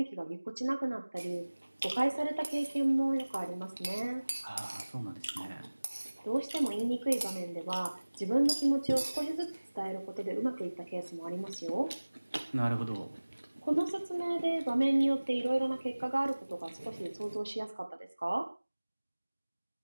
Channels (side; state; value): both; inverted; correlation -1.00